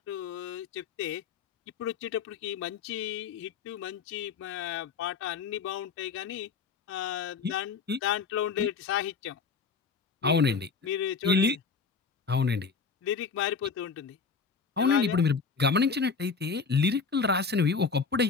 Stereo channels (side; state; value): right; quieter; 5.2 dB